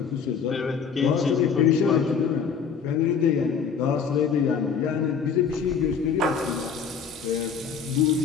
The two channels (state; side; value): quieter; right; 6.3 dB